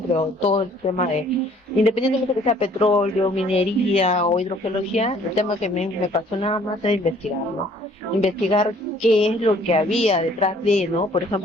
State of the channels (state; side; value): normal; both; correlation 0.58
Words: creo, todo el tema de, independientemente de que sea petróleo, minería o hidrogeología, el tema que me apasionaba más es investigar, ¿no? Investigar qué es lo que había detrás de, ¿no? Por